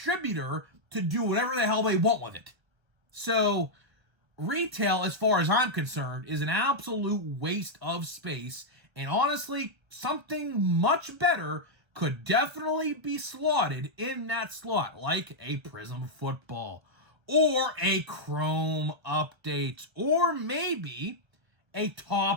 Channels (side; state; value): left; late; 1.3 ms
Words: to do whatever the hell they want with it. So retail, as far as I'm concerned, is an absolute waste of space, and honestly, something much better could definitely be slotted in that slot, like a Prism Football, or a Chrome Updates, or maybe a